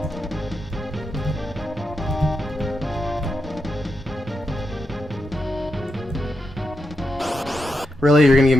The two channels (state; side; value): normal; both; correlation 0.86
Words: Really? You're gonna give